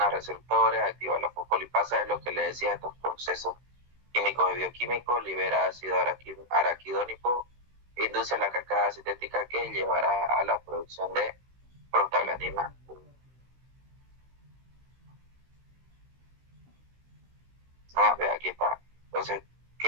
a receptores, activa la fosfolipasa, es lo que le decía, estos procesos químicos y bioquímicos, libera ácido araquidónico, induce la cascada sintética que llevará a la producción de prostaglandina. Aquí está. Entonces,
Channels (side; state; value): left; late; 16 ms